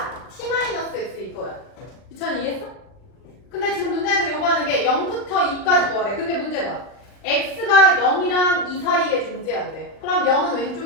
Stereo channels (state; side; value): late; right; 39 ms